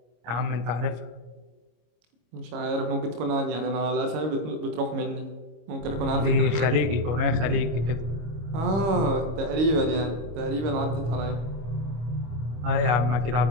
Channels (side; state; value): left; late; 26 ms